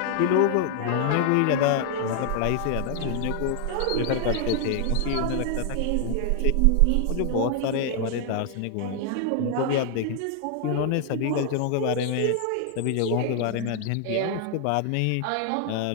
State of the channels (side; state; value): both; different; correlation 0.00